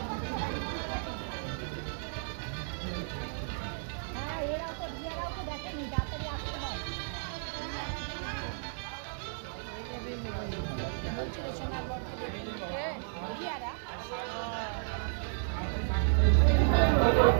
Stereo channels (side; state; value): left; silent; digital silence